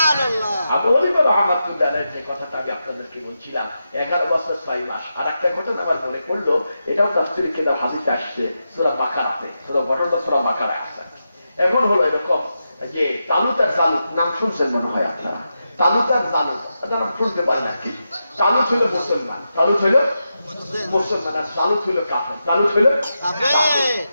আবু হানিফা রাহমাতুল্লাহ আলাইহি যে কথাটা আমি আপনাদেরকে বলছিলাম, 11 বছর 6 মাস। আর একটা ঘটনা আমার মনে পড়লো, এটাও তাফসীরে কিতাব হাদিসে আসছে, সূরা বাকারাতে, ঘটনাটা সূরা বাকারায় আছে। এখন হলো এরকম যে তালুত আর জালুত নাম শুনছেন মনে হয় আপনারা। তালুত আর জালুত নাম শুনতে পারেন না কি? তালুত হইল মুসলমান, তালুত হইল মুসলমান, আর জালুত হইল কাফের। তালুত হইল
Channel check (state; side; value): inverted; both; correlation -0.88